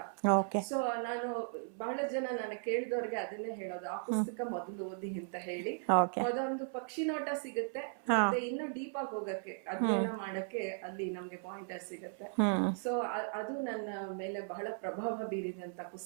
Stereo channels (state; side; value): silent; left; 53 dB below the other